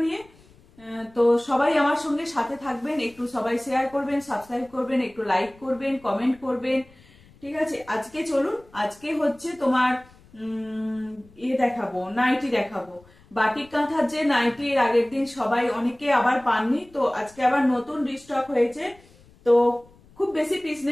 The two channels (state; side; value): noise; left; rumble, 27 dB below the sound